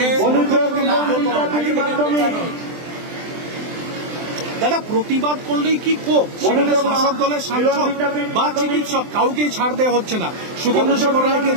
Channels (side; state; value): left; late; 24 ms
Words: দাদা, প্রতিবাদ করলেই কি ক্ষোভ? সেখানে শাসক দলের সাংসদ বা চিকিৎসক কাউকেই ছাড় দেওয়া হচ্ছে না। সুখেন্দু শেখর রায়কে